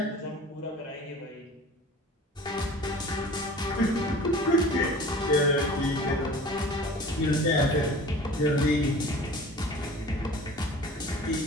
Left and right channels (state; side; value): normal; both; correlation 0.42